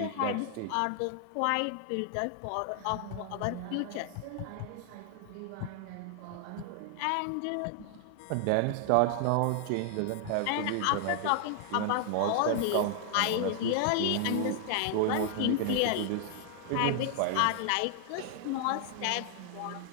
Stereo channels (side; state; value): both; different; correlation 0.00